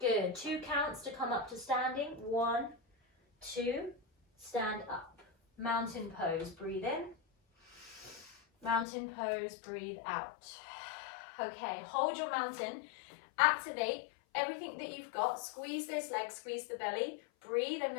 2 counts to come up to standing. 1, 2. Stand up. Mountain pose. Breathe in. Mountain pose. Breathe out. Okay. Hold your mountain. Activate everything that you've got. Squeeze those legs. Squeeze the belly. Breathe. I'm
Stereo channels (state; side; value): drops out; right; at 8.8 s